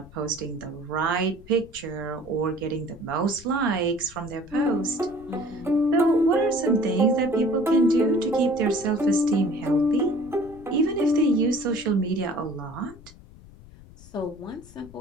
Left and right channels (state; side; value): noise; left; rumble, 21 dB below the sound